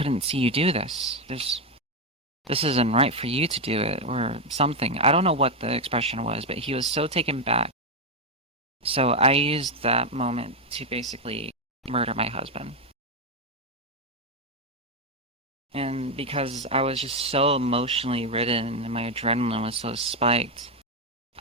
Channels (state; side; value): normal; both; correlation 0.04